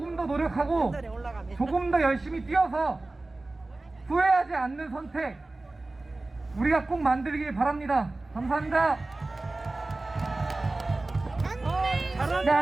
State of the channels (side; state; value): left; quieter; 3.0 dB